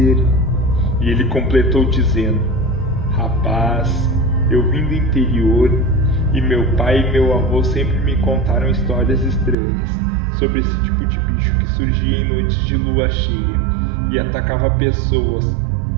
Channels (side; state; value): left; drops out; at 9.6 s